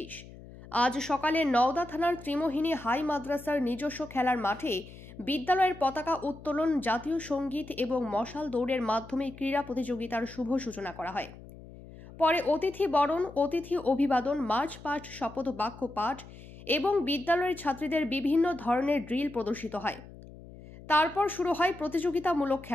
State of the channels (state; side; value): noise; left; hum, 17 dB below the sound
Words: আজ সকালে নওদা থানার ত্রিমোহিনী হাই মাদ্রাসার নিজস্ব খেলার মাঠে বিদ্যালয়ের পতাকা উত্তোলন, জাতীয় সঙ্গীত এবং মশাল দৌড়ের মাধ্যমে ক্রীড়া প্রতিযোগিতার শুভ সূচনা করা হয়। পরে অতিথি বরণ, অতিথি অভিবাদন, মার্চ পাস্ট, শপথ বাক্য পাঠ এবং বিদ্যালয়ের ছাত্রীদের বিভিন্ন ধরনের ড্রিল প্রদর্শিত হয়। তারপর শুরু হয় প্রতিযোগিতামূলক